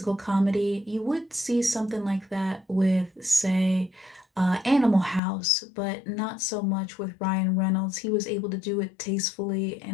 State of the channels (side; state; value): right; drops out; at 5.2 s